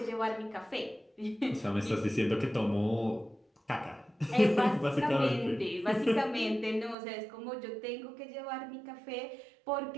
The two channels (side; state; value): left; drops out; at 7.0 s